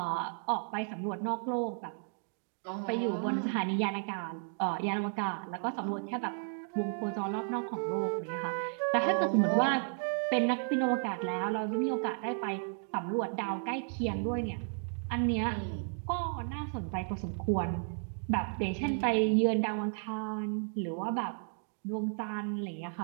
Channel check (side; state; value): left; silent; 56 dB below the other